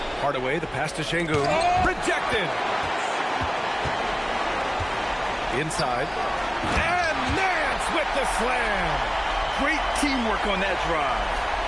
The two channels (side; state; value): both; identical; correlation 1.00